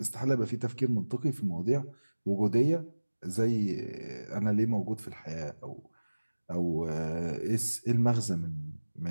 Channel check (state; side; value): inverted; both; correlation -1.00